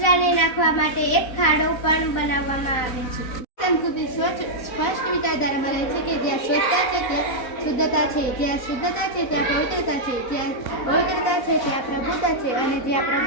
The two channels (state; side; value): late; right; 4.0 ms